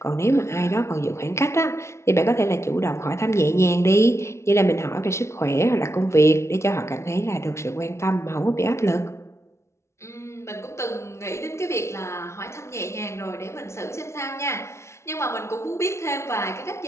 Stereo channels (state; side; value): late; right; 0.13 ms